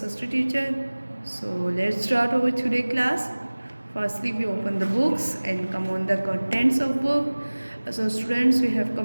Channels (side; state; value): both; inverted; correlation -1.00